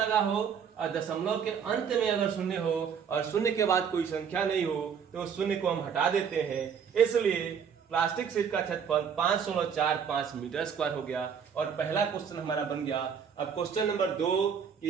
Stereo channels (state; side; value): quieter; left; 7.1 dB